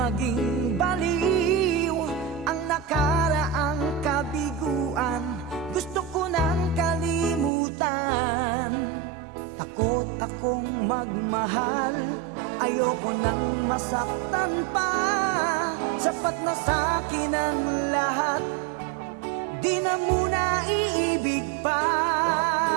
baliw ang nakaraang kabiguan. Gusto ko nang kalimutan. Takot akong magmahal. Ayoko nang masaktan pa. Sapat na sa'kin ang lahat. Di na muna iibig pa.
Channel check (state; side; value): drops out; left; at 7.5 s